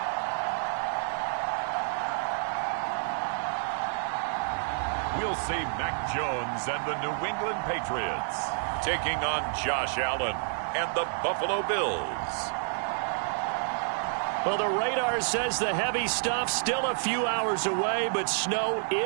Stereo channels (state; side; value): silent; left; digital silence